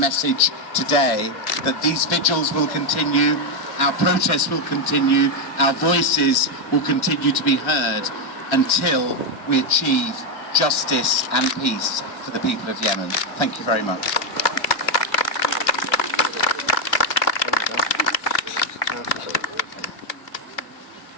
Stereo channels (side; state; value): right; late; 2.5 ms